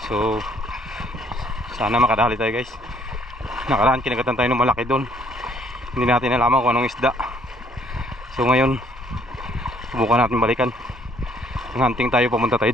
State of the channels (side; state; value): both; normal; correlation 0.64